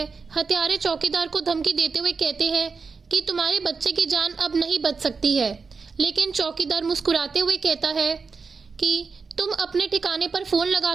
हत्यारे चौकीदार को धमकी देते हुए कहते हैं कि तुम्हारे बच्चे की जान अब नहीं बच सकती है, लेकिन चौकीदार मुस्कुराते हुए कहता है कि तुम अपने ठिकाने पर फोन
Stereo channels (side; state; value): left; quieter; 4.9 dB